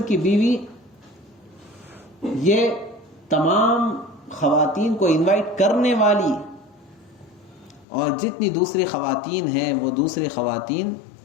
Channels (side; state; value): right; drops out; at 7.9 s